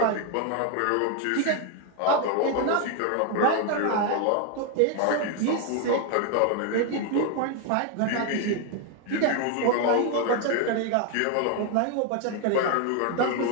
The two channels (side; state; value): both; different; correlation 0.01